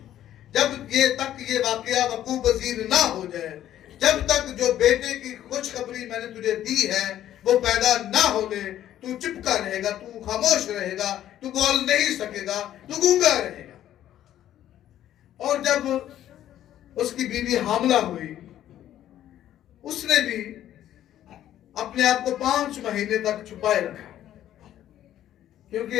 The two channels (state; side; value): quieter; right; 12.0 dB